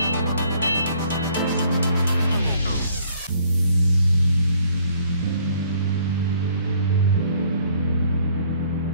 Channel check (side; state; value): both; inverted; correlation -0.61